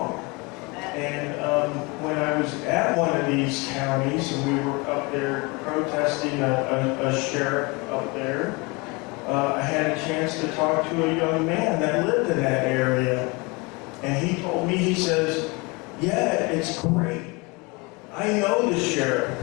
And when I was at one of these counties and we were up there protesting a sheriff up there, I had a chance to talk to a young man that lived in that area. And he told me, he says, yeah, it's great. I know the sheriff.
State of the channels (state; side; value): quieter; right; 27.2 dB